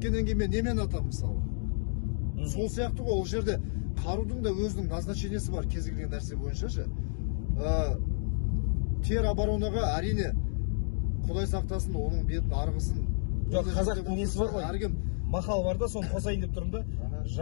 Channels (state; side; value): silent; right; digital silence